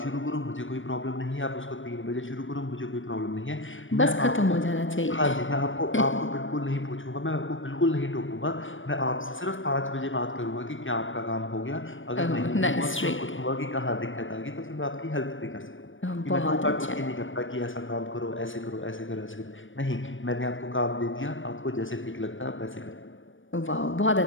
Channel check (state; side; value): late; right; 0.57 ms